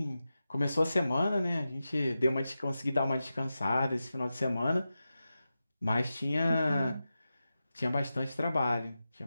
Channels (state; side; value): inverted; both; correlation -0.92